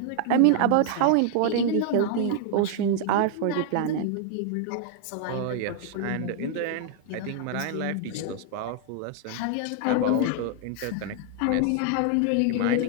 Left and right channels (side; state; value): both; different; correlation 0.00